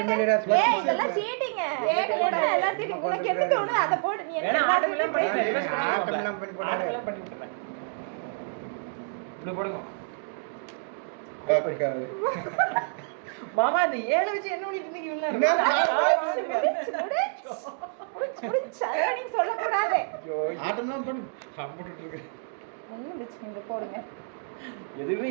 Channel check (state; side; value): silent; left; digital silence